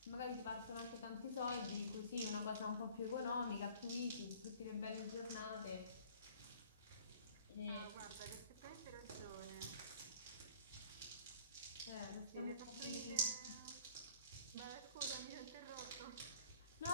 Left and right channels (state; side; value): inverted; both; correlation -0.51